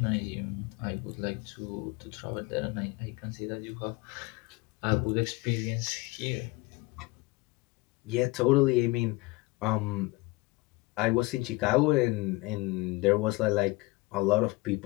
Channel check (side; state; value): right; quieter; 23.3 dB